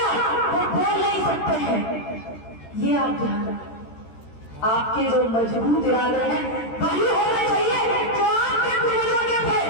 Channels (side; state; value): right; late; 13 ms